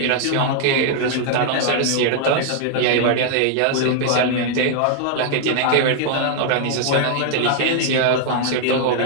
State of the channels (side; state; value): both; different; correlation 0.00